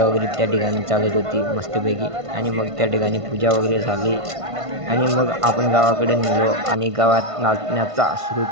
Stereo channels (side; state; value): left; late; 1.5 ms